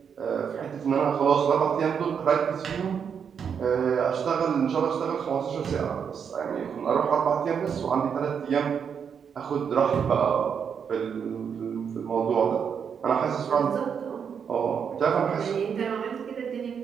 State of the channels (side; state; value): left; quieter; 7.1 dB